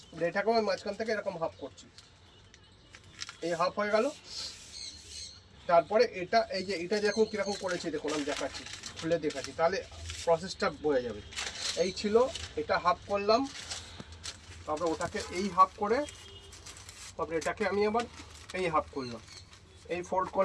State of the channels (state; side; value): identical; both; correlation 1.00